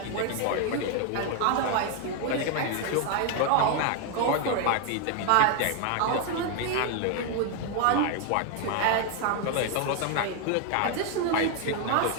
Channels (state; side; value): different; both; correlation 0.01